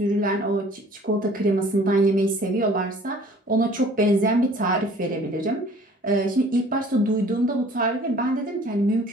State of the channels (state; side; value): normal; both; correlation 0.52